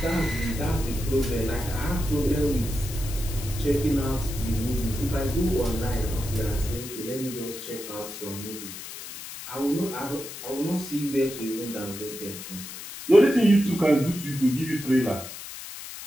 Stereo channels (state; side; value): noise; left; hiss, 11 dB below the sound